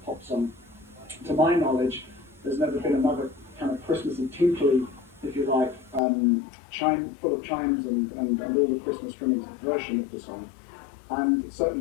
pop song. To my knowledge, there's never been another kind of Christmassy, tinkly, if you like, full of chimes and all the Christmas trimmings version of the song, and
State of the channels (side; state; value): right; drops out; at 6.0 s